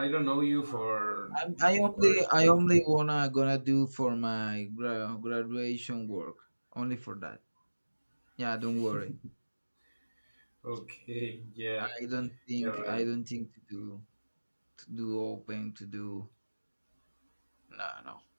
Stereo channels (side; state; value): both; inverted; correlation -1.00